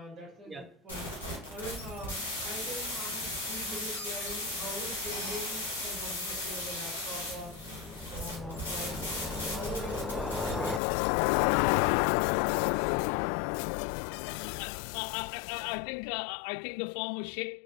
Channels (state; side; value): drops out; right; at 10.8 s